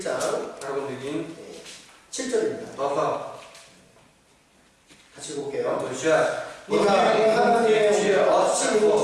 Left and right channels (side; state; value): both; identical; correlation 1.00